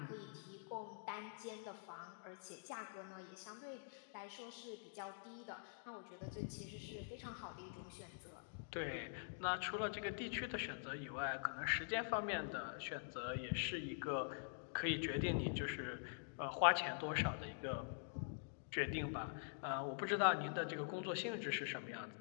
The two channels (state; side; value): silent; right; digital silence